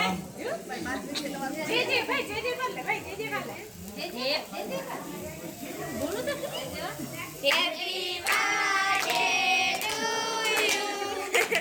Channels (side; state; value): both; identical; correlation 1.00